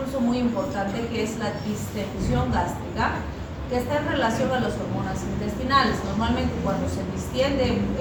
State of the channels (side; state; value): both; identical; correlation 1.00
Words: muy importante que es la distensión gástrica, que está en relación a las hormonas intestinales. Normalmente cuando se distiende